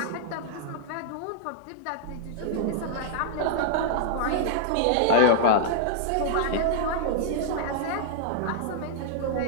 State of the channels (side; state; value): both; different; correlation -0.01